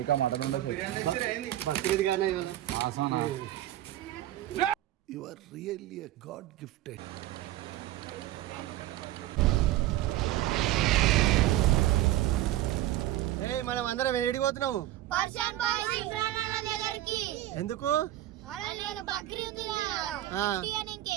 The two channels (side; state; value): left; quieter; 14.4 dB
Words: మటన్ బక్రీద్ గానే You are really a God gifted. మనం అందరం ఏడిపోతున్నాము పర్షియన్ బాయ్స్ ఇమ్రాన్ అన్న దగ్గరికి. ఎందుకు?